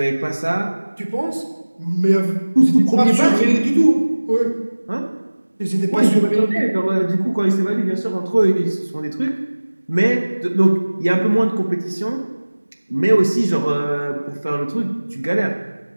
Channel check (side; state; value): both; inverted; correlation -1.00